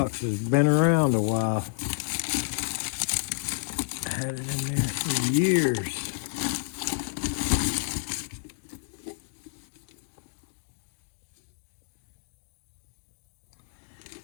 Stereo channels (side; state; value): right; silent; digital silence